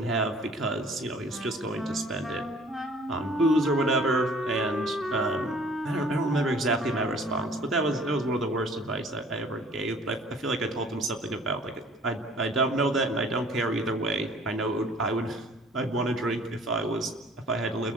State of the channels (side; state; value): both; normal; correlation 0.53